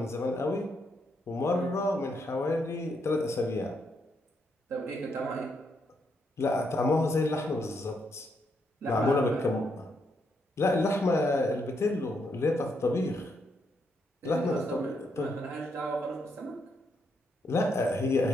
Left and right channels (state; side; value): normal; both; correlation 0.78